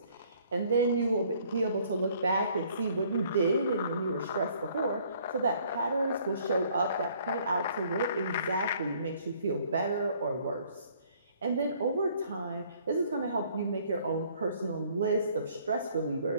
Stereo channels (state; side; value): inverted; both; correlation -0.60